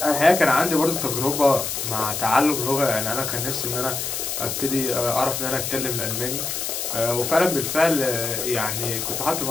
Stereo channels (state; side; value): noise; left; hiss, 3 dB below the sound